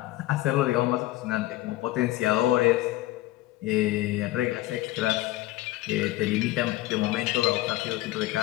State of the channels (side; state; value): right; quieter; 16.7 dB